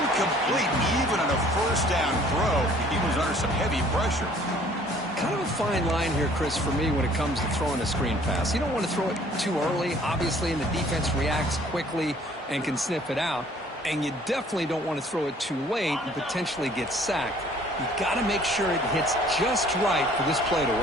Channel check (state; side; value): normal; both; correlation 0.56